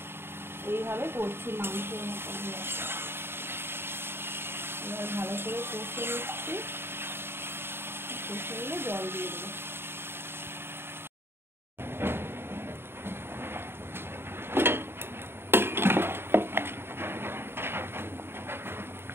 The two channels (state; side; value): late; left; 0.11 ms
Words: এইভাবে করছি মাংসের মতন। এবার ভালো করে কষে নিচ্ছি, কষে নিয়ে জল দিয়ে দেবো।